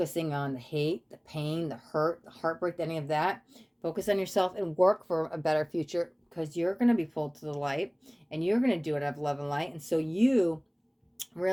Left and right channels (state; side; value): identical; both; correlation 1.00